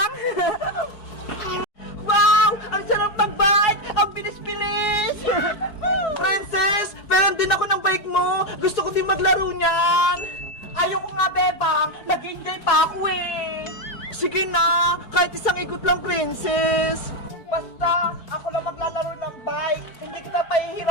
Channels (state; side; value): late; right; 4.7 ms